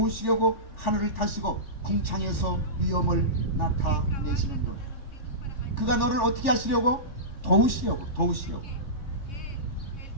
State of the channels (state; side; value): late; right; 3.4 ms